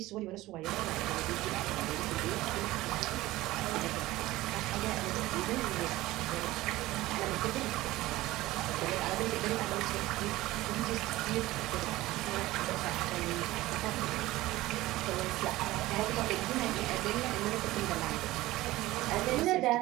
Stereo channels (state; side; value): quieter; left; 17.7 dB